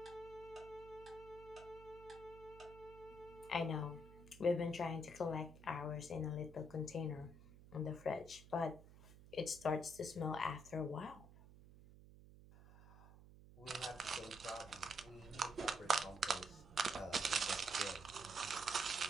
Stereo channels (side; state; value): right; noise; hum, 18 dB below the sound